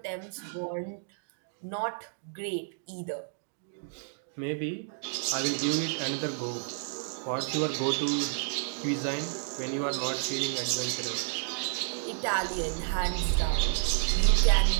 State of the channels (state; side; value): silent; left; digital silence